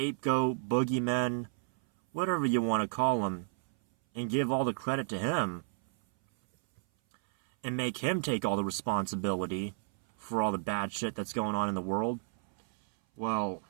boogeyman, whatever you want to call him, and give all the credit to him, and make him take all the responsibility for all the bad shit that's going on in the world, well,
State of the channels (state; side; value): silent; left; 56 dB below the other